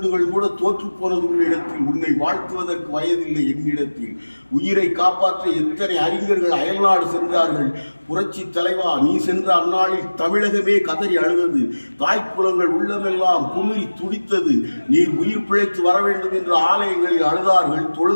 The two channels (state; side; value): inverted; both; correlation -1.00